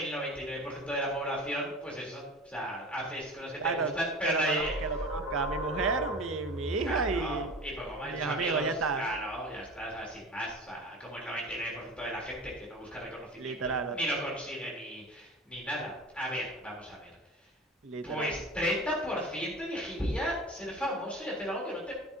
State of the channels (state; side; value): normal; both; correlation 0.35